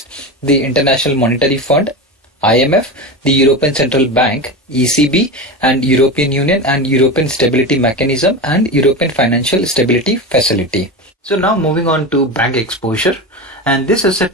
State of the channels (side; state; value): both; normal; correlation 0.23